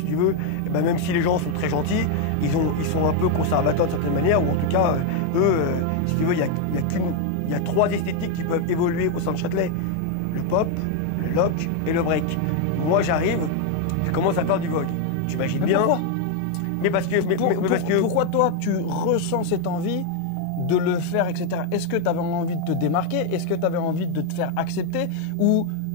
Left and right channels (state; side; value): different; both; correlation 0.01